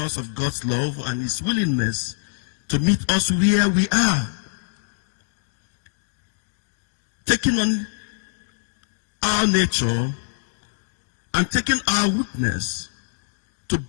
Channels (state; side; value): silent; right; digital silence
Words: of God's love and his willingness to meet us where we are, taking on our nature and taking our weakness to